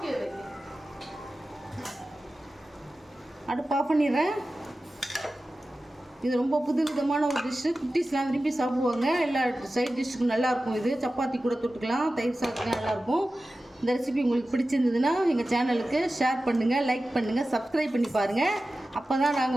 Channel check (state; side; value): normal; both; correlation 0.95